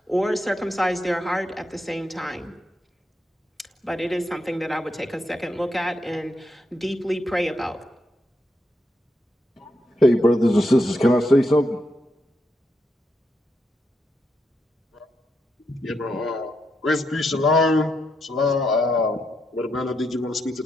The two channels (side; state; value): both; normal; correlation 0.82